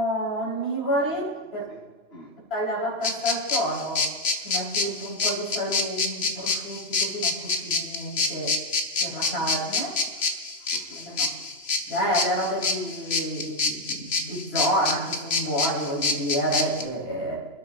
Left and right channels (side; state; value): right; late; 3.0 ms